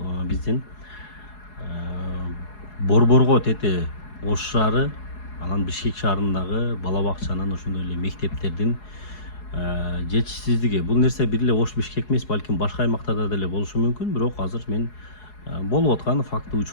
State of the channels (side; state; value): right; late; 4.8 ms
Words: биздин Борборго тети Ош шаары, анан Бишкек шаарындагы бала бакчанын, ошондой эле мектептердин жетишсиздиги. Бул нерсе бир эле Ош Бишкек эмес, балким башка аймактарда деле болушу мүмкүн, бирок азыр мен болуп аткан факты